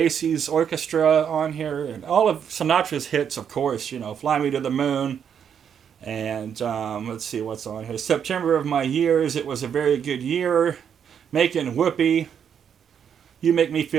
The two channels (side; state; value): left; quieter; 8.0 dB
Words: orchestra on here, and all of Sinatra's hits, of course, you know, "Fly Me to the Moon," and let's see what's on here. "September of My Years," "It Was a Very Good Year," "Making Whoopee," "You Make Me